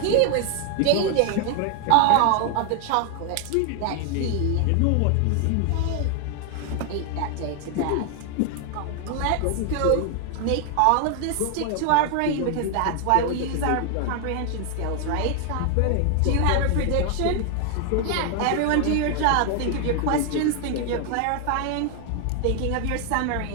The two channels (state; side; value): different; both; correlation 0.00